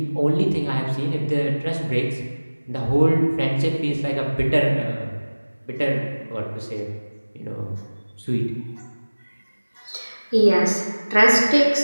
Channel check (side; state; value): both; inverted; correlation -1.00